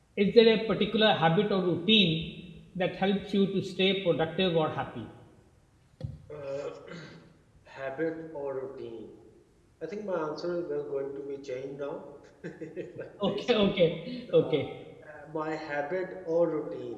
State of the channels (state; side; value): identical; both; correlation 1.00